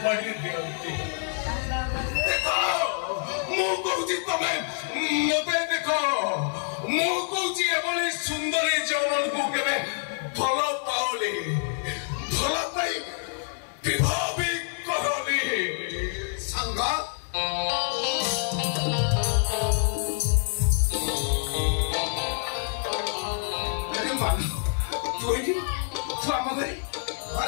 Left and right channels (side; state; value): right; silent; digital silence